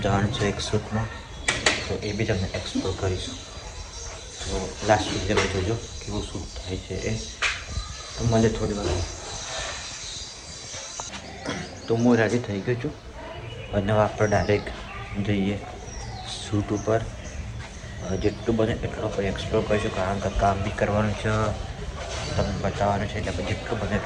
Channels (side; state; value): both; identical; correlation 1.00